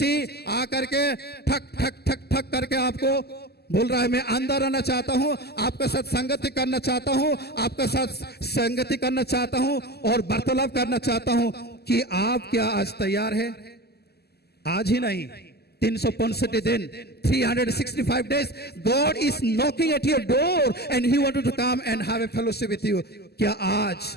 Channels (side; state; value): right; late; 0.46 ms